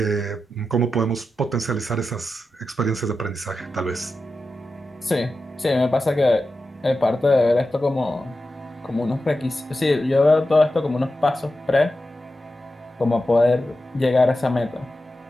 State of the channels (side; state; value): both; normal; correlation 0.91